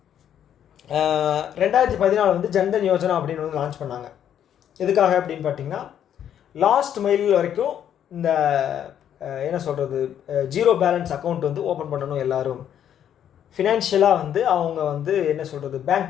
2014 வந்து ஜன்தன் யோஜனா அப்படின்னு வந்து லான்ச் பண்ணாங்க. எதுக்காக அப்படின்னு பார்த்தீங்கன்னா லாஸ்ட் மைல் வரைக்கும் இந்த என்ன சொல்கிறது, ஜீரோ பேலன்ஸ் அக்கௌண்ட் வந்து ஓப்பன் பண்ணணும். எல்லோரும் ஃபினான்ஷியலாக வந்து அவங்க வந்து என்ன சொல்கிறது,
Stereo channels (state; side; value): quieter; right; 9.8 dB